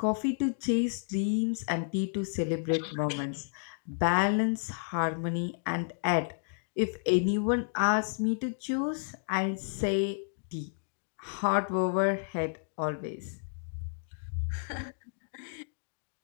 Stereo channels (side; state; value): right; silent; digital silence